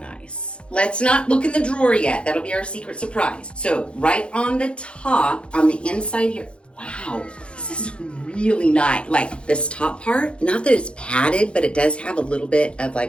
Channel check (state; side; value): late; right; 0.057 ms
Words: Let's not look in the drawer yet. That'll be our secret surprise. So right on the top, on the inside here, wow, this is really nice. Like this top part, not that it's padded, but it does have a little bit of